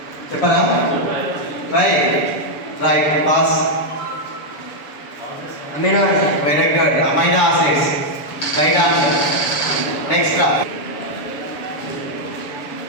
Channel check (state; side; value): late; right; 7.0 ms